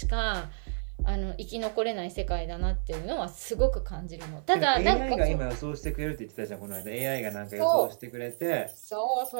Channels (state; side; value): silent; left; 58 dB below the other